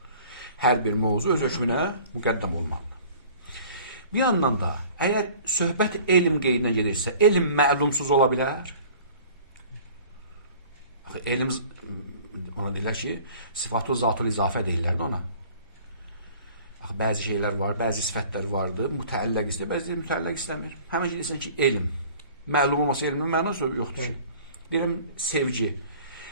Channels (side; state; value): both; inverted; correlation -0.48